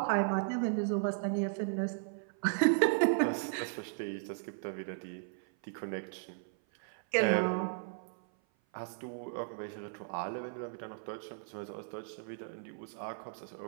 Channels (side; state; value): left; silent; 54 dB below the other